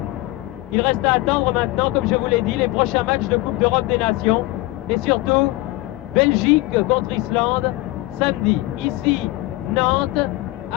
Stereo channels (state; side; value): quieter; right; 19.3 dB